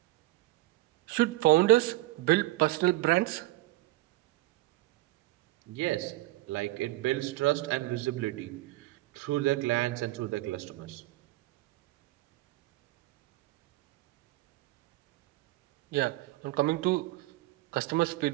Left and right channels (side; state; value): left; quieter; 18.6 dB